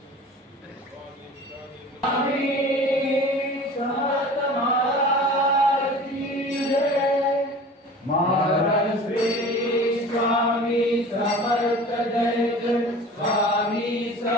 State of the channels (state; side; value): normal; both; correlation 0.41